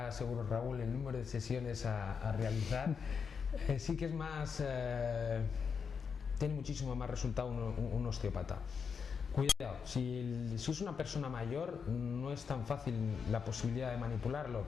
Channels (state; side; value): quieter; right; 6.1 dB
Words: seguro Raúl el número de sesiones a realizar, sí que es más, tiene muchísimo más resultado un osteópata. Cuidado, si es una persona mayor no es tan fácil la posibilidad de manipularlo,